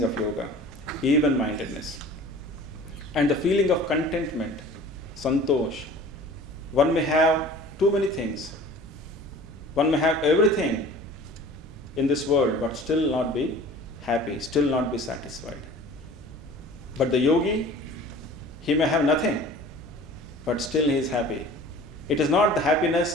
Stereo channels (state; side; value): normal; both; correlation 0.44